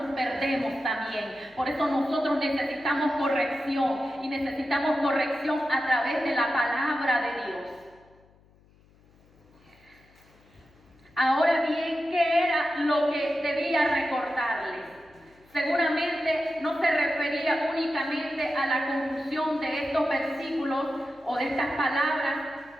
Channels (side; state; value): left; noise; hum, 30 dB below the sound